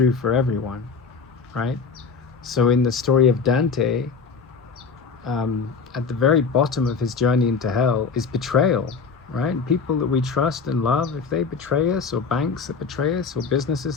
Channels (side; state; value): right; quieter; 5.3 dB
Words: for everyone, right? So in the story of Dante, at the very bottom of his journey into hell is betrayal, right? People that we trust and love, if they betray us, or banks that betray us, or businesses